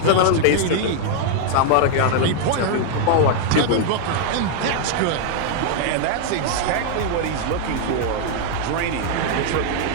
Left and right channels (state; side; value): different; both; correlation 0.00